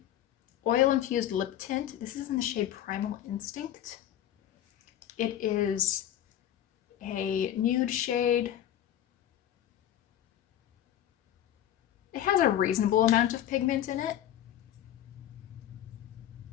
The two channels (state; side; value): quieter; right; 11.4 dB